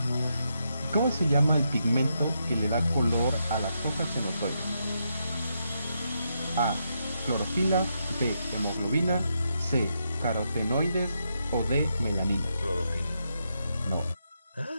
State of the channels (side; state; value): both; inverted; correlation -0.81